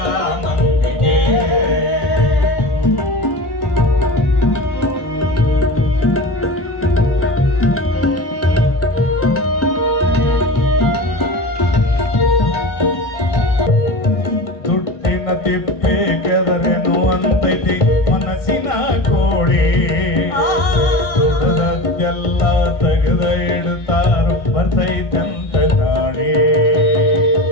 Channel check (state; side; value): late; right; 1.6 ms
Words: ಮಂದಿಗೆ ತಿಪ್ಪೆ ಕೆದರೆನು ಅಂತೈತಿ ಮನಸ್ಸಿನ ಕೋಡಿ ದುಡದದ್ದೆಲ್ಲ ತೆಗೆದ ಇಡ್ತಾರು ಬರ್ತೈತಂತ ನಾಡಿ